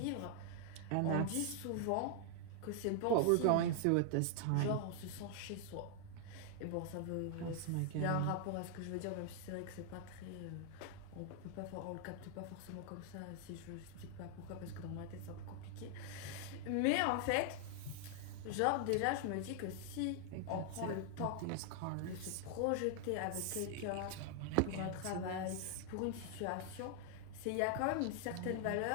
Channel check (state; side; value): different; both; correlation 0.00